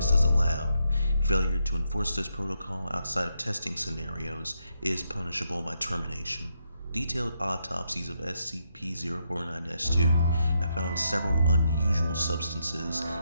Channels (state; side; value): inverted; both; correlation -0.80